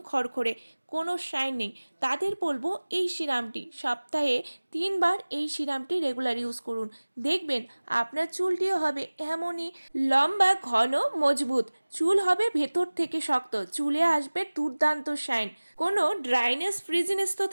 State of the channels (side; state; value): both; inverted; correlation -1.00